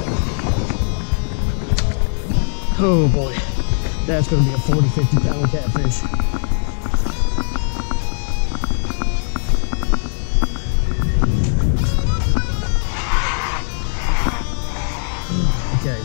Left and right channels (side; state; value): right; silent; 67 dB below the other